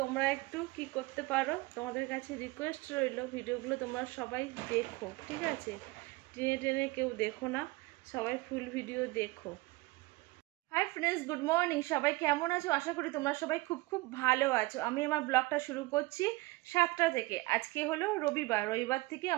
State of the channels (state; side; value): quieter; left; 22.1 dB